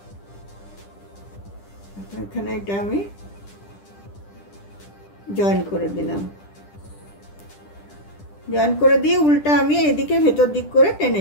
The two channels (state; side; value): late; right; 10 ms